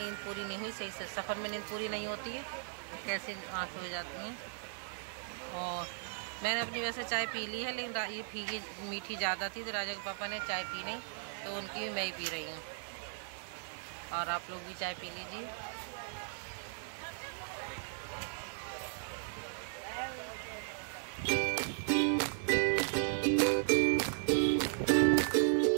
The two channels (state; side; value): silent; left; digital silence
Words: पूरी नहीं हुई सही से। सफ़र में नींद पूरी नहीं होती है, कैसी आँखें हो जाती हैं। और मैंने अपनी वैसे चाय पी ली है, लेकिन ये फीकी मीठी ज़्यादा थी तो राजा के पापा ने चाय पी नहीं, तो उनकी भी मैं ही पी रही हूँ। और आप लोग भी चाय पी लीजिए।